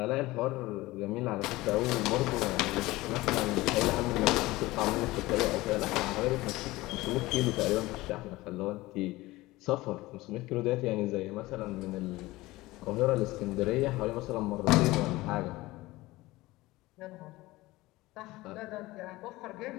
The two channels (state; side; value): quieter; right; 19.3 dB